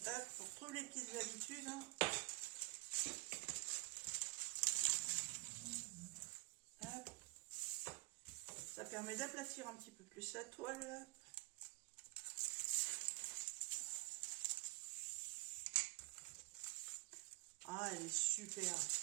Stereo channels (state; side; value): quieter; left; 26.8 dB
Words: Hop, pour trouver les petites habitudes. Hop. Ça permet d'aplatir un petit peu plus la toile. Ah, elle est super.